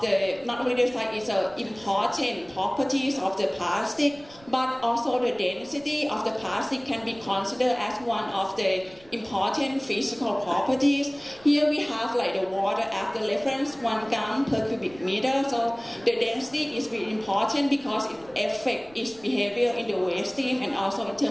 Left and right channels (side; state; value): right; noise; rumble, 25 dB below the sound